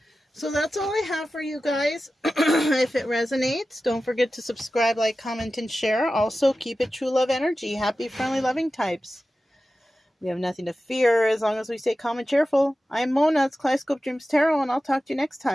So that's all I have for you guys. If it resonates, don't forget to subscribe, like, comment, and share. Also, keep it true love energy. Happy, friendly, loving types. We have nothing to fear as long as we stay calm and cheerful. I'm Mona. It's Kaleidoscope Dreams Tarot, and I'll talk to you next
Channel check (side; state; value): both; normal; correlation 0.94